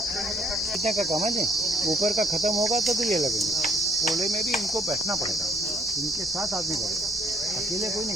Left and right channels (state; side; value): normal; both; correlation 0.61